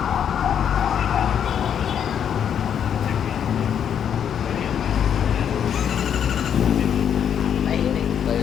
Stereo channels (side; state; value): right; quieter; 8.6 dB